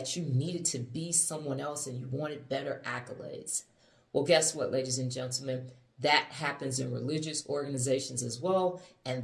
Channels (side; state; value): both; identical; correlation 1.00